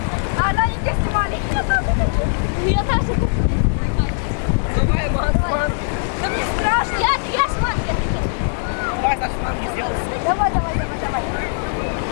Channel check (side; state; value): right; silent; digital silence